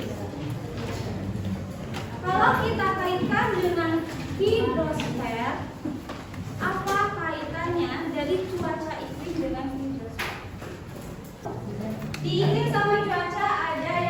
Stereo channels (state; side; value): identical; both; correlation 1.00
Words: Kalau kita kaitkan dengan hidrosfer, apa kaitannya dari cuaca iklim dengan hidrosfer? Di iklim sama cuaca ada